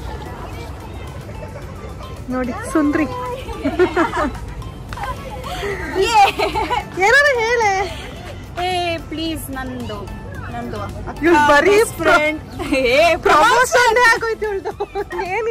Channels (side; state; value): both; identical; correlation 1.00